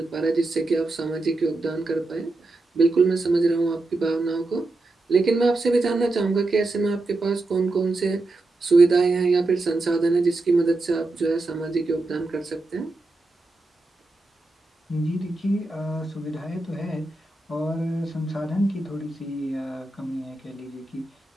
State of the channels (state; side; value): quieter; left; 3.0 dB